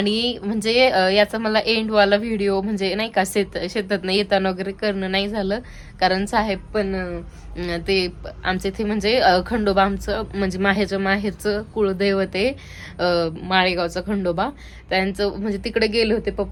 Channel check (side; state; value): both; identical; correlation 1.00